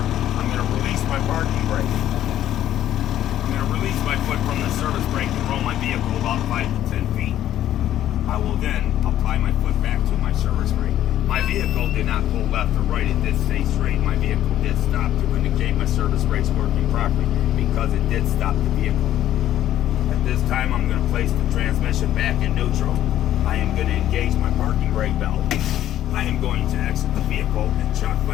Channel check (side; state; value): right; quieter; 12.0 dB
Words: going to release my parking brake. I'm going to release my foot from the service brake and roll my vehicle about 5 to 10 feet. I will then apply my foot back to my service brake. My vehicle did not pull left or right. It did stay straight. My vehicle did stop to indicate my service brake's working properly because it did stop the vehicle. At this time, I'm going to place the transmission back in neutral. I am going to engage my parking brake valve. I am going to exit the vehicle and chock